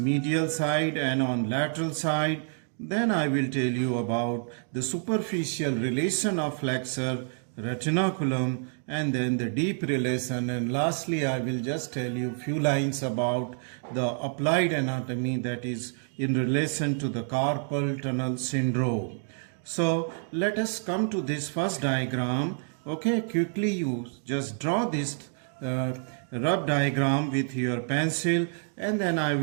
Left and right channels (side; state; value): left; silent; 59 dB below the other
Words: side and on lateral side, then I will tell you about the superficial relation of flexor retinaculum and then the deep relation, and lastly I will just tell you few lines about the applied anatomy, that is in relation to the carpal tunnel syndrome. So let us come to this first diagram. Okay, quickly you just draw this rough diagram with your pencil, and then I